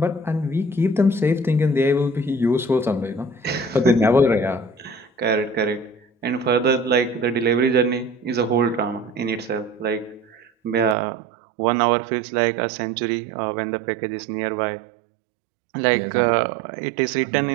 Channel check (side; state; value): left; drops out; at 11.0 s